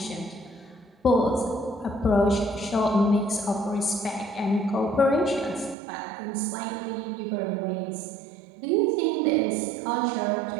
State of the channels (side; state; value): left; drops out; at 5.8 s